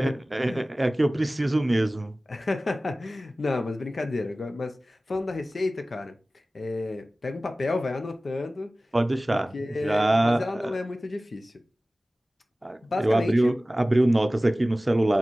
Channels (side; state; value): both; normal; correlation 0.97